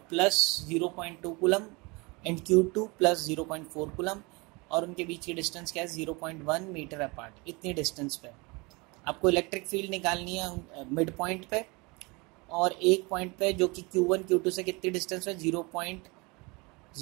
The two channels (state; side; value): quieter; left; 27.0 dB